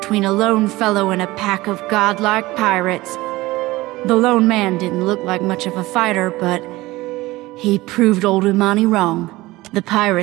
a lone fellow and a pack of godlike pirates. The lone man didn't look like much of a fighter, but he proved old Umani wrong. The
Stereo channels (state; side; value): quieter; left; 19.3 dB